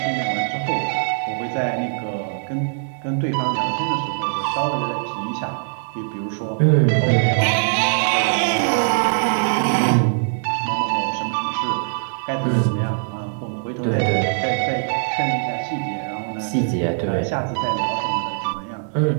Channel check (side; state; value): left; silent; digital silence